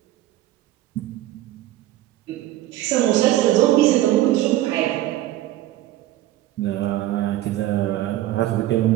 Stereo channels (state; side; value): quieter; left; 14.8 dB